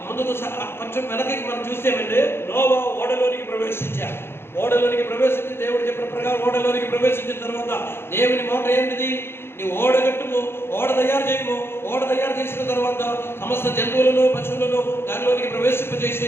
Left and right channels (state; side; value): late; right; 0.11 ms